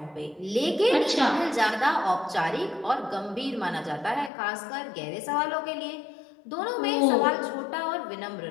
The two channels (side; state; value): right; drops out; at 4.3 s